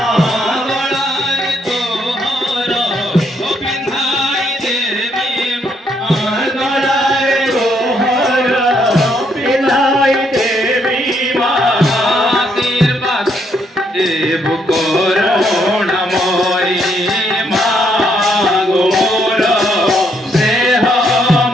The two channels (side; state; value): both; normal; correlation 0.73